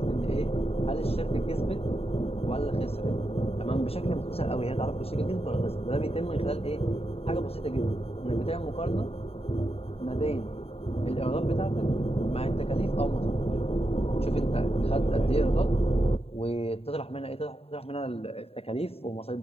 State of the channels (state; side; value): late; right; 0.29 ms